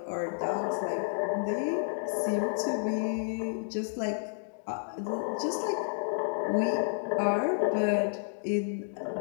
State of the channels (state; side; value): silent; right; digital silence